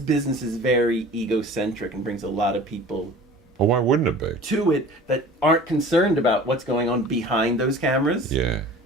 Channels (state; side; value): normal; both; correlation 0.43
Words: is very egocentric and brings a lot of people Oh, why wouldn't it be? to it that aren't concerned about what's going on behind those cameras. Yeah.